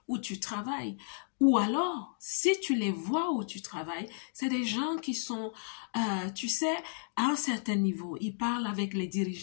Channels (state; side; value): silent; right; digital silence